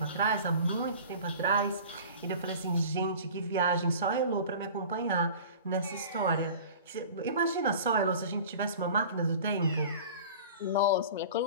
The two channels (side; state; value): both; inverted; correlation -0.41